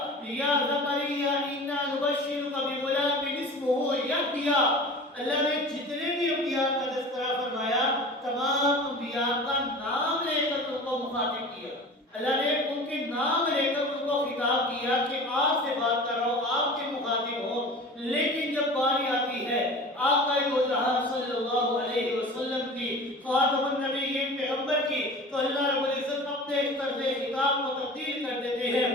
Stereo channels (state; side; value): normal; both; correlation 0.38